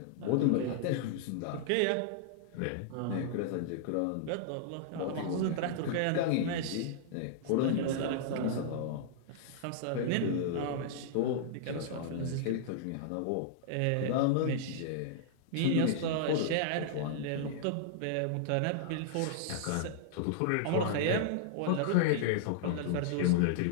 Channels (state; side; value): different; both; correlation -0.01